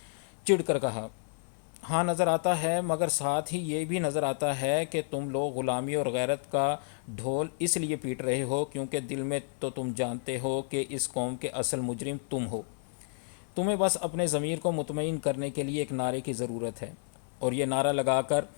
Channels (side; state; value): right; silent; 57 dB below the other